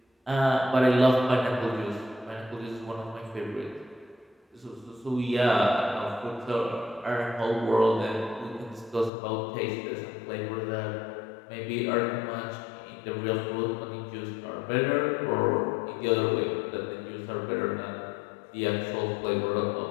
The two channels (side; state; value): right; drops out; at 9.1 s